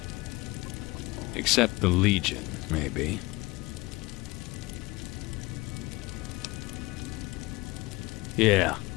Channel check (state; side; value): quieter; right; 22.3 dB